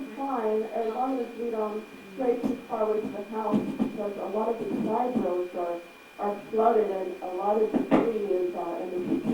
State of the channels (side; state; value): both; identical; correlation 1.00